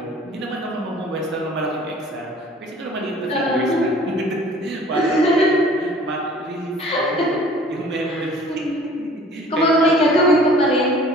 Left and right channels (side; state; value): both; normal; correlation 0.50